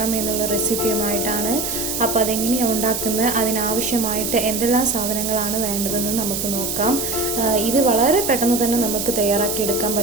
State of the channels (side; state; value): right; noise; hiss, 3 dB below the sound